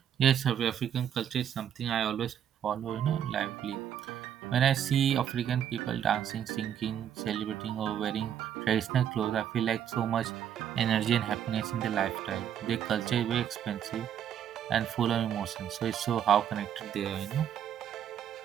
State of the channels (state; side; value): quieter; left; 9.5 dB